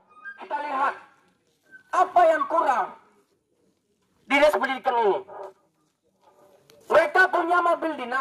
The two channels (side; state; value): both; identical; correlation 1.00